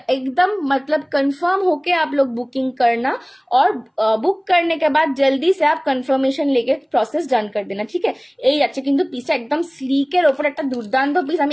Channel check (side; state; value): both; identical; correlation 1.00